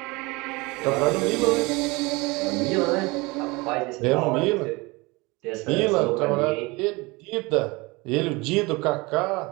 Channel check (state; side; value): quieter; left; 24.6 dB